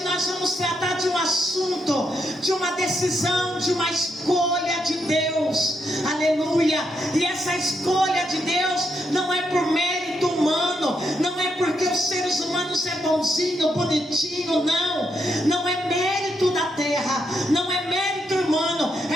nós vamos tratar de um assunto, de uma decisão, de uma escolha de Deus. aleluia. E essa escolha de Deus não é por mérito humano, não é porque os seres humanos é bonzinho, bonitinho, não é mérito da terra, não é mérito humano,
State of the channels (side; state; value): both; normal; correlation 0.79